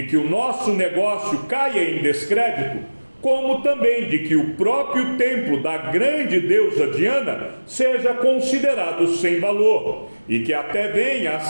que o nosso negócio caia em descrédito, como também de que o próprio templo da grande deusa Diana seja considerado sem valor, e que até venha a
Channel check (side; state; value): both; inverted; correlation -1.00